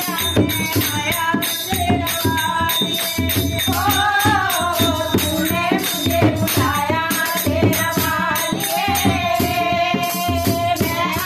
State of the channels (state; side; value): identical; both; correlation 1.00